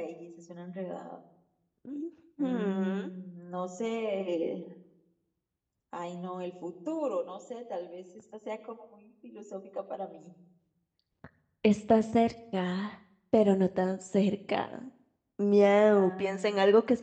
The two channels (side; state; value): both; identical; correlation 1.00